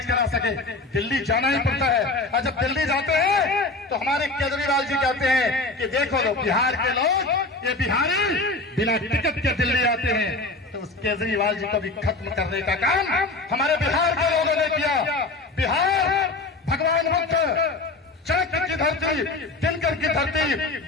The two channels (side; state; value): right; quieter; 3.3 dB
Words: करा सके। दिल्ली जाना ही पड़ता है, और जब दिल्ली जाते हैं तो हमारे केजरीवाल जी कहते हैं कि देखो लो, बिहार के लोग, ये बिहारी बिना टिकट के दिल्ली आते हैं। तो उस केजरीवाल जी को भी खत्म करने का काम हमारे बिहार के धरती, दिनकर की धरती,